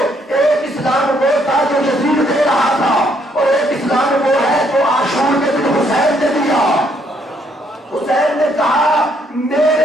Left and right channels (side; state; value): both; normal; correlation 0.70